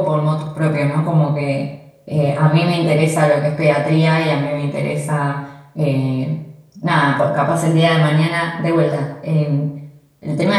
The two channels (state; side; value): identical; both; correlation 1.00